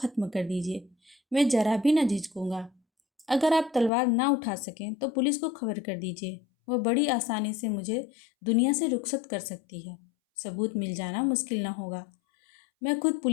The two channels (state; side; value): drops out; right; at 3.9 s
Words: कर दीजिए। मैं ज़रा भी न झिझकूंगा। अगर आप तलवार ना उठा सकें तो पुलिस को खबर कर दीजिए। वह बड़ी आसानी से मुझे दुनिया से रुखसत कर सकती है। सबूत मिल जाना मुश्किल न होगा। मैं खुद